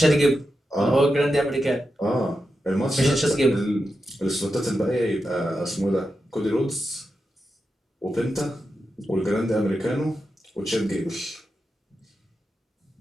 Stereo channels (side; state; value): both; normal; correlation 0.89